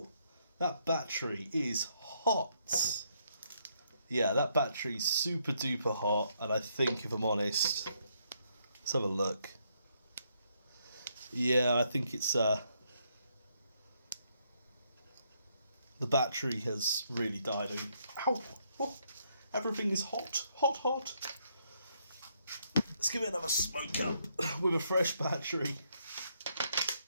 that battery is hot. Yeah, that battery's super duper hot, and I think, if I'm honest, let's have a look. Yeah, I think it's the battery has really died. Ow! Oh, everything is hot, hot, hot. Let's give it another smoke up with a fresh battery.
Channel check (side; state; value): both; inverted; correlation -0.74